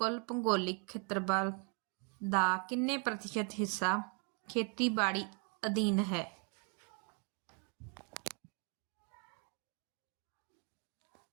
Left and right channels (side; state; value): left; quieter; 37.5 dB